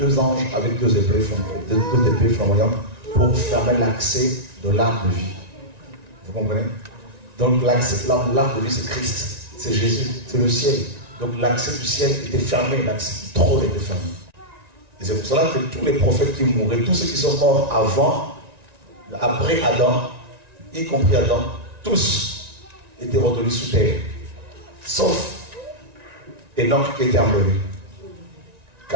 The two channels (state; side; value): late; left; 1.9 ms